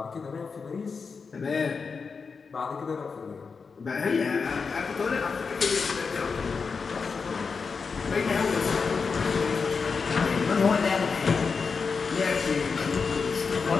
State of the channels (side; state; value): right; quieter; 5.1 dB